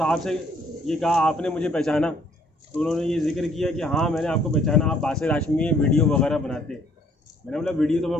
से ये कहा, आपने मुझे पहचाना? तो उन्होंने ये जिक्र किया कि हाँ मैंने आपको पहचाना, आप बासिर हाशमी वीडियो वगैरह बनाते। मैंने बोला वीडियो तो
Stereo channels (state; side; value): normal; both; correlation 0.64